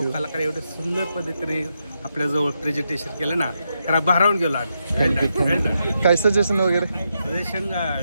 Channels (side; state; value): both; inverted; correlation -0.83